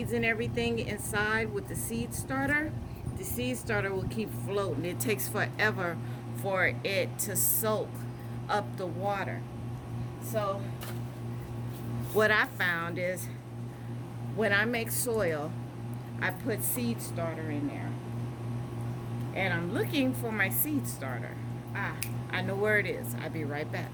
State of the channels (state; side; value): identical; both; correlation 1.00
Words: and everything inside with the seed starter will keep floating. It takes forever for it to soak up the water. So what I found is when I make soil, I put seed starter in there. And I'm looking for my seed starter. I know where it is. I'll be right back.